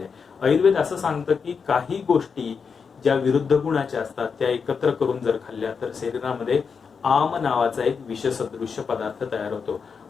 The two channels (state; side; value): quieter; right; 5.8 dB